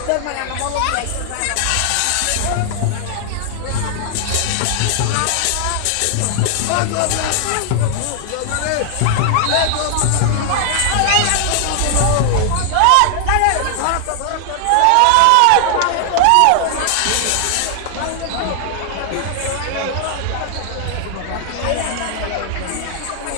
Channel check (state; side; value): different; both; correlation 0.00